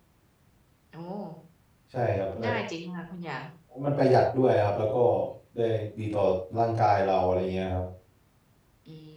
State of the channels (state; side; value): identical; both; correlation 1.00